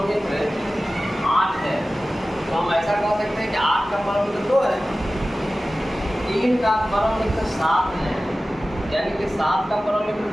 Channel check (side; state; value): both; normal; correlation 0.96